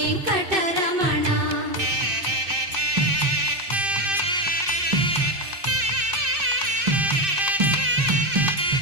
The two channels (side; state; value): left; late; 2.6 ms